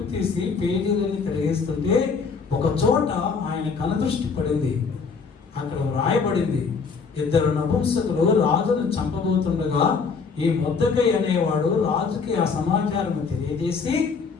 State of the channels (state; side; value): quieter; right; 5.2 dB